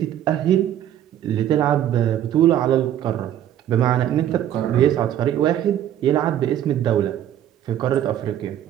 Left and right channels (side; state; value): left; quieter; 11.1 dB